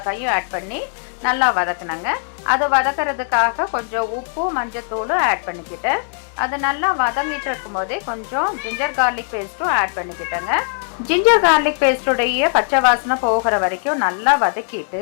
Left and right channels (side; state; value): right; silent; 60 dB below the other